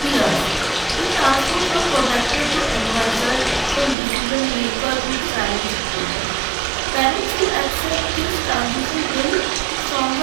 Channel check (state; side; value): drops out; left; at 4.0 s